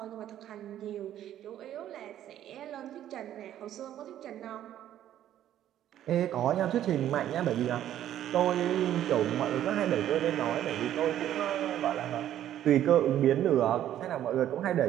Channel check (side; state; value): left; quieter; 11.6 dB